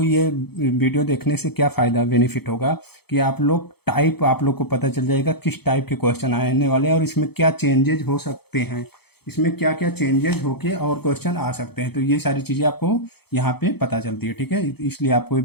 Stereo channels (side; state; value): right; late; 0.97 ms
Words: ये वीडियो देखने से क्या फ़ायदा बेनिफिट होगा कि आप लोग टाइप, आप लोग को पता चल जाएगा किस टाइप के क्वेश्चन आने वाले हैं और इसमें क्या चेंजेज हो सकते हैं, इसमें क्या क्या चेंजेस होके और क्वेश्चन आ सकते हैं। तो ये सारी चीज़ें आपको यहाँ पे पता चलती है। ठीक है, इसलिए आपको ये